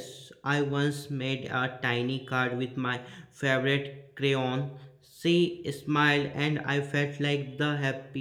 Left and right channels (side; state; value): both; identical; correlation 1.00